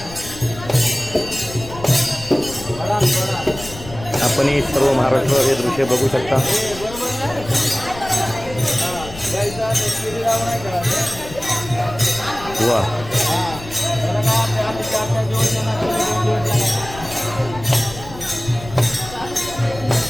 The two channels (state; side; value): noise; left; rumble, 15 dB below the sound